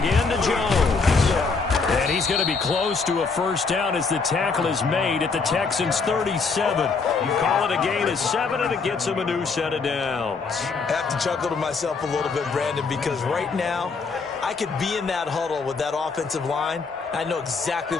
to Jones. And he's going to be close to a first down as the tackle is made at the Texans' 37. You call it a gain of 7, and it gets him a new set of downs. I have to chuckle to myself a little bit, Brandon, because right now I could be in that huddle with that offensive line. I know exactly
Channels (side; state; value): right; quieter; 4.7 dB